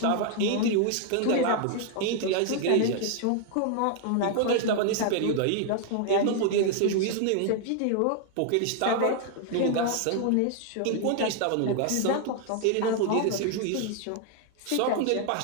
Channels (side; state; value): both; different; correlation 0.00